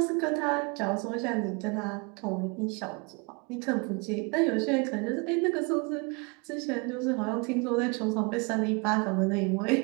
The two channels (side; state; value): left; quieter; 31.2 dB